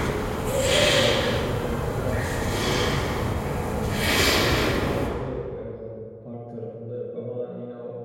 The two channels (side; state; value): both; identical; correlation 1.00